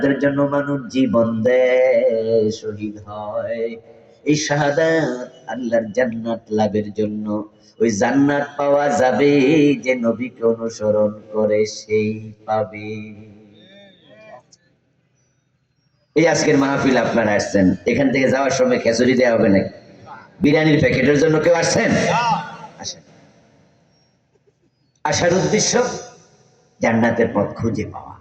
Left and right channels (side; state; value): both; identical; correlation 1.00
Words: জন্য মানুষ জীবন দেয়, শহীদ হয়। এই শাহাদাত আল্লাহর জান্নাত লাভের জন্য। ওই জান্নাত পাওয়া যাবে যে নবীকে অনুসরণ করে, সেই পাবে। এই আজকের মাহফিল আপনারা আসছেন, এখান থেকে যাওয়ার সময় খেচুড়ি দেওয়া হবে নাকি? বিরিয়ানির প্যাকেটের জন্য কেউ আসছেন? আসেন। আসার উদ্দেশ্য জান্নাতের পথ খুঁজে পাওয়া।